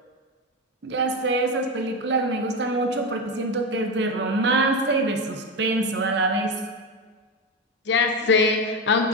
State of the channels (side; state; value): both; normal; correlation 0.15